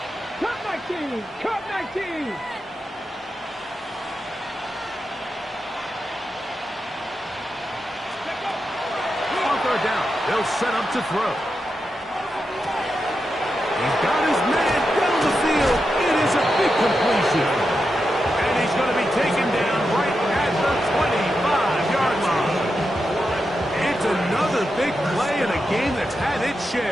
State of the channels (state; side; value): normal; both; correlation 0.88